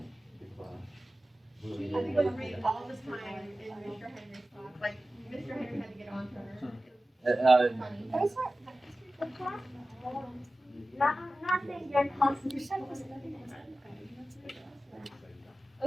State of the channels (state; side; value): normal; both; correlation 0.95